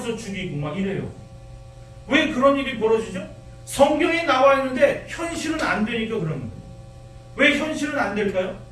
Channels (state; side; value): identical; both; correlation 1.00